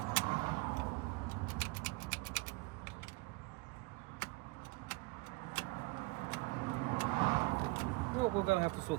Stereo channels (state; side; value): quieter; left; 24.9 dB